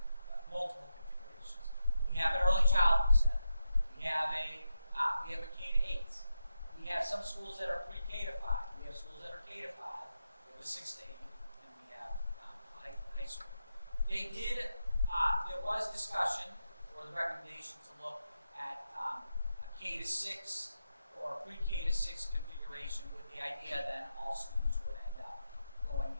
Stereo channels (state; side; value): inverted; both; correlation -0.87